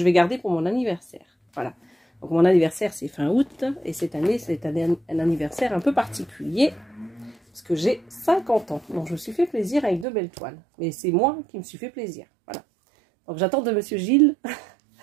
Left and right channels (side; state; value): left; drops out; at 10.1 s